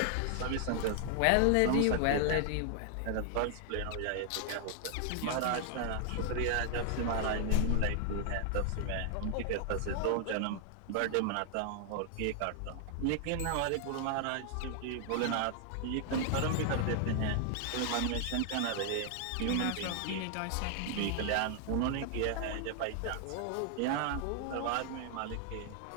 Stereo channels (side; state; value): both; different; correlation 0.00